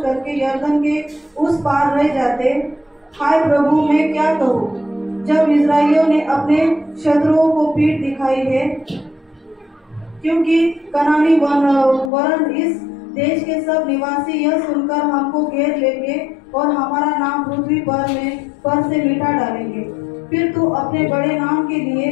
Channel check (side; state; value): right; drops out; at 12.1 s